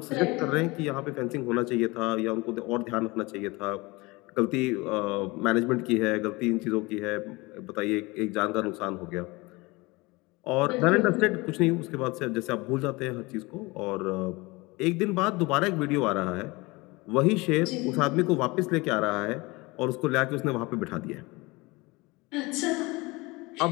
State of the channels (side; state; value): right; quieter; 23.8 dB